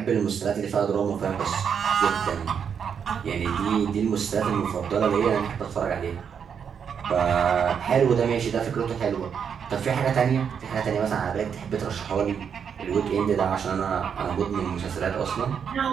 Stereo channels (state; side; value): quieter; left; 7.3 dB